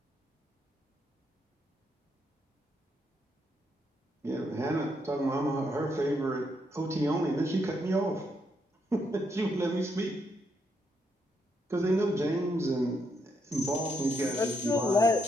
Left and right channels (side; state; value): both; normal; correlation 0.77